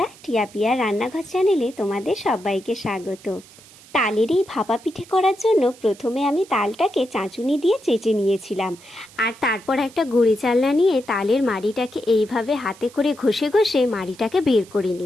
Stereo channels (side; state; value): right; noise; hiss, 23 dB below the sound